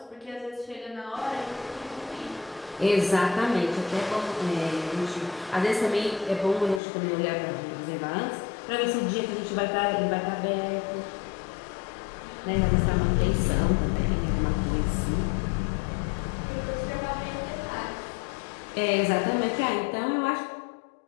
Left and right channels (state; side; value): drops out; right; at 6.8 s